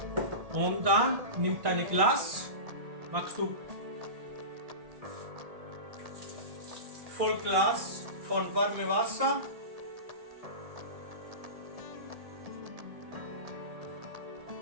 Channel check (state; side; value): late; left; 1.9 ms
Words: Und dann nimmt ein Glas, machst du voll Glas von warmem Wasser.